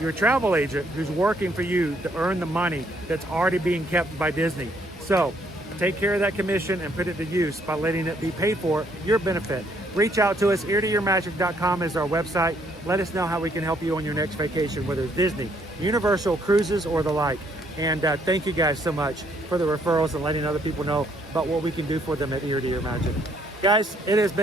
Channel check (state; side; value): normal; both; correlation 0.68